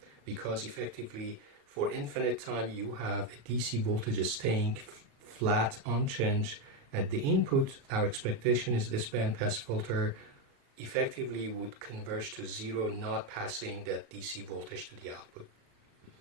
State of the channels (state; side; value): late; left; 36 ms